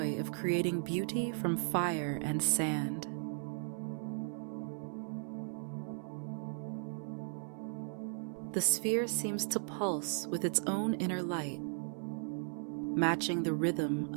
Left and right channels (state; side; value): silent; left; 53 dB below the other